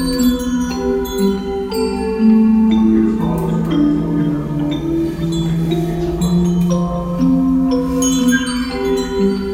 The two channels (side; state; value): both; identical; correlation 1.00